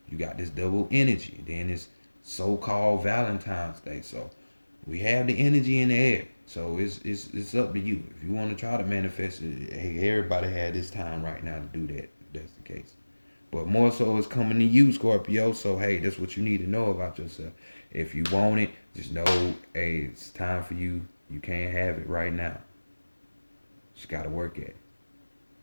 you got this double energy. Then it's so-called Valentine's Day. So we have the energy in the air. So it's up to you. If you want to try to manifest it, hey, everybody had this time right now to do that. If that's the case. But more so it's coming to you, Scorpio. So hey, that's what you need to know about yourself. If you want it, just know, hey, it's time for you. You can't have it right now. Just gotta work at it.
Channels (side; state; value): both; inverted; correlation -1.00